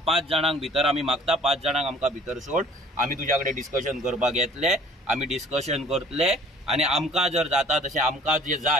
5 जाणांक भितर आमी मागता, 5 जाणांक आमकां भितर सोड. आमी तुज्या कडेन डिस्कशन करपाक येतले, आमी डिस्कशन करतले. आनी आमकां जर जाता तशें, आमकां जे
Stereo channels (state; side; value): normal; both; correlation 0.53